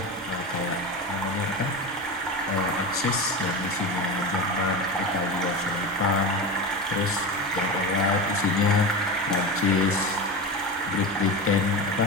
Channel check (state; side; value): normal; both; correlation 0.24